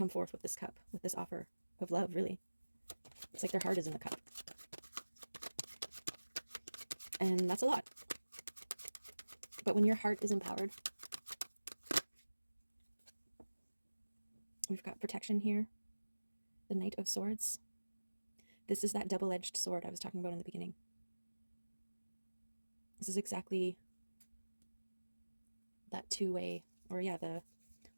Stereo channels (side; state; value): both; inverted; correlation -1.00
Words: forth with this cup, with this offer of love, really. It's like their heart is in the cup. And that's a lot. But when your heart is empowered, we've got protection here. The Knight of Swords. This is that double-edged sword I was talking about in the beginning. This is exactly that two-way, or yeah, what